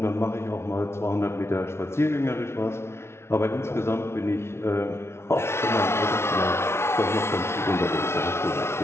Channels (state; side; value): late; right; 0.12 ms